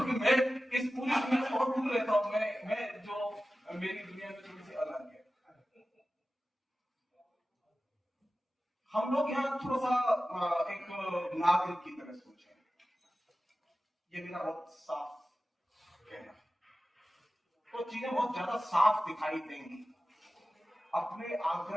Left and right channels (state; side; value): normal; both; correlation 0.95